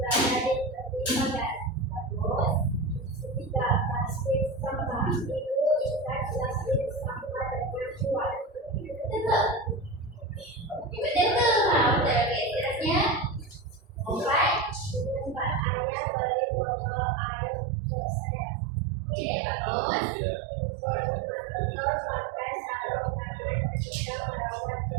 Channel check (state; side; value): drops out; left; at 15.7 s